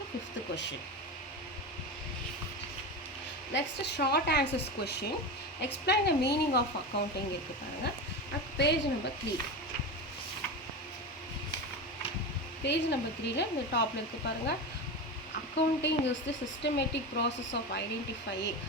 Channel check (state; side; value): normal; both; correlation 0.22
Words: fifth question. Next short answers question. Explain the meaning of accounting இருக்குது பாருங்கள். அது பேஜ் நம்பர் 3. பேஜ் நம்பர் 3ல இந்த டாப்பில் இருக்குது பாருங்கள். Accounting is the systematic process of identifying